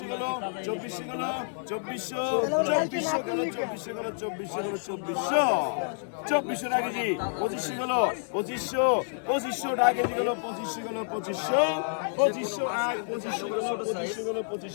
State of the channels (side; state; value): right; silent; digital silence